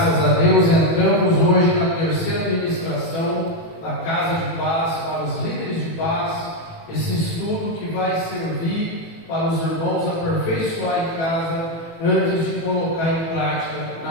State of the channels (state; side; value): late; right; 18 ms